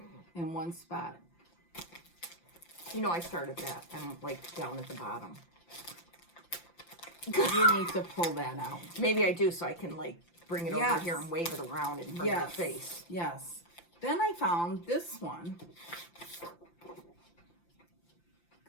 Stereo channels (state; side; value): late; right; 5.8 ms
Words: in one spot. You know, I started that. I'm like down at the bottom. You need to pull that out. Maybe I do, so I can like bring it over Yes. here and wave it around in front of your face. Yes. Then I found this one.